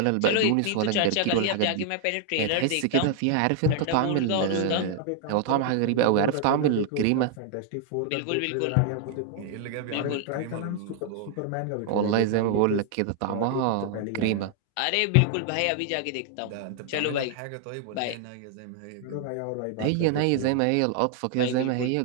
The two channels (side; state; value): both; different; correlation 0.00